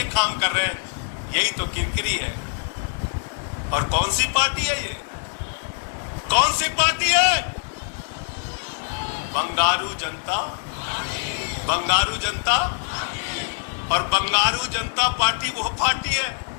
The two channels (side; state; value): right; silent; digital silence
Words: काम कर रहे हैं, यही तो किरकिरी है। और कौन सी पार्टी है ये? कौन सी पार्टी है? बंगारू जनता, बंगारू जनता। और बंगारू जनता पार्टी वो पार्टी है